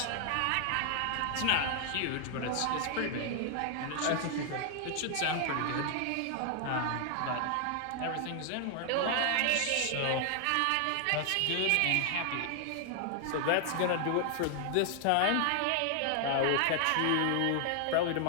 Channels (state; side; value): different; both; correlation 0.00